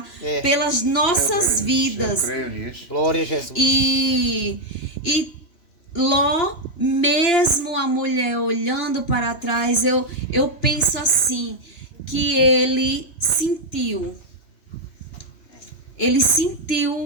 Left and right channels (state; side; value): late; right; 3.1 ms